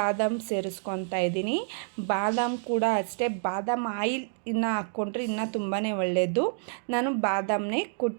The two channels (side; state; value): left; silent; 59 dB below the other